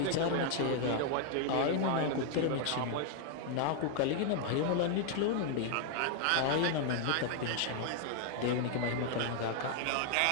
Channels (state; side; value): different; both; correlation 0.00